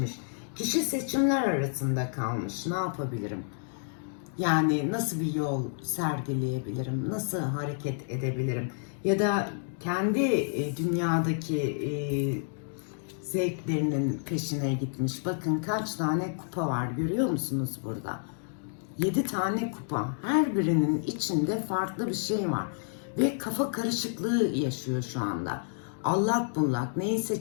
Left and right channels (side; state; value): right; silent; digital silence